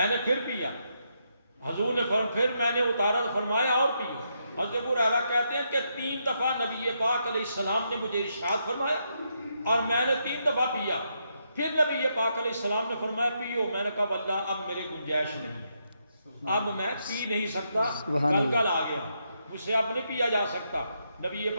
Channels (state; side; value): inverted; both; correlation -0.80